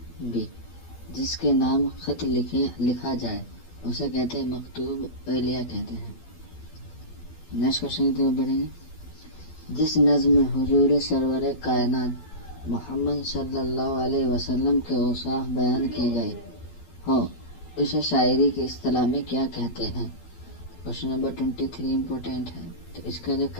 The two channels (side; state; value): right; late; 12 ms